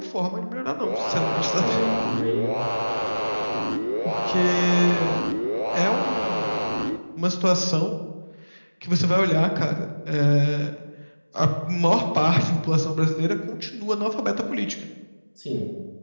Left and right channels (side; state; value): both; inverted; correlation -1.00